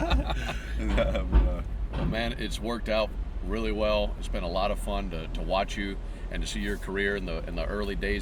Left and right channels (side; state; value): both; identical; correlation 1.00